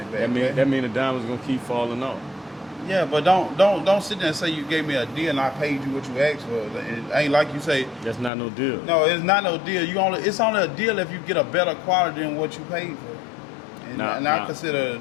back. That mean the diamond's gonna keep falling off. Yeah, but don't sit there and say you gave me a deal and I paid you what you asked for. It ain't like you say. That's not no deal. No, it's not no deal. It's only a deal if you get a better quality than what you paid for. And I consider it a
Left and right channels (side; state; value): right; drops out; at 8.3 s